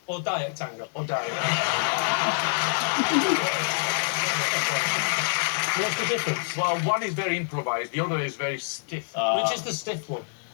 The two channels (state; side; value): silent; right; digital silence